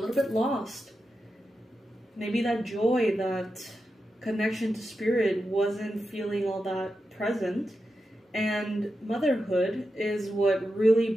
bit lost. Maybe that joy, that connection to spirit wasn't feeling all that present. And motherhood is what really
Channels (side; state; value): both; normal; correlation 0.89